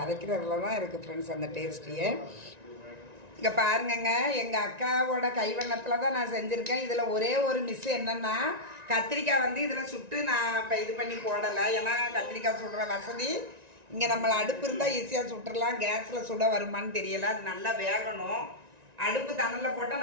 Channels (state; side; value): late; left; 1.9 ms